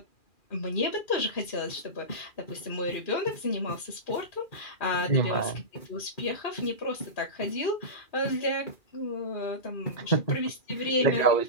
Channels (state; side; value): late; right; 2.4 ms